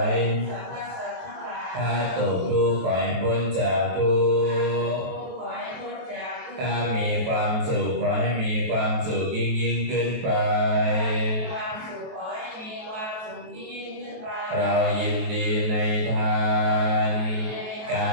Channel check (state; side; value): late; left; 23 ms